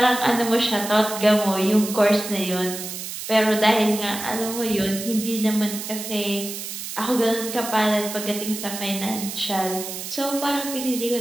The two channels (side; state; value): right; noise; hiss, 8 dB below the sound